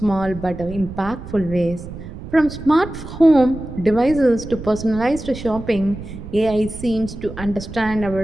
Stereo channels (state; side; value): noise; right; rumble, 12 dB below the sound